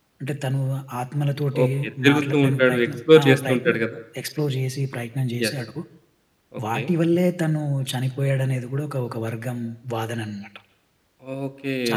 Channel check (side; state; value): both; identical; correlation 1.00